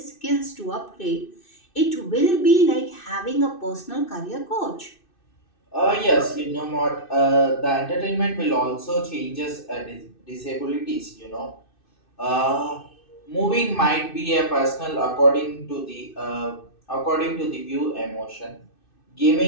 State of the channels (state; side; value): late; right; 2.6 ms